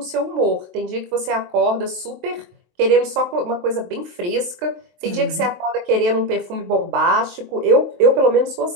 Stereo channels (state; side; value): late; left; 23 ms